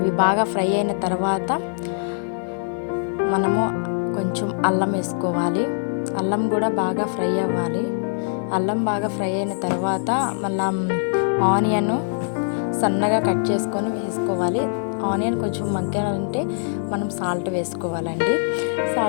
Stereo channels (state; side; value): silent; right; 64 dB below the other